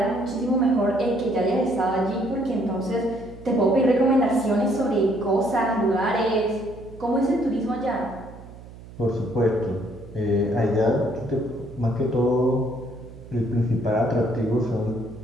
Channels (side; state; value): right; noise; hum, 17 dB below the sound